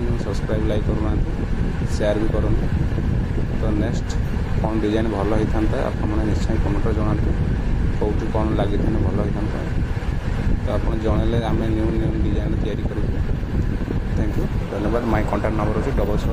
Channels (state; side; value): identical; both; correlation 1.00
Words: सब्सक्राइब लाइक करूना शेयर भी करूँ तो नेक्स्ट कौन डिजाइन भल होता आपने निश्चय कमेंट जनातु कौटी कौन लगी भल होता तो आप जनइले आम न्यू न्यू डिजाइन तैयारी करूँ थैंक यू धन्यवाद माय कॉन्टैक्ट नंबर अच्छे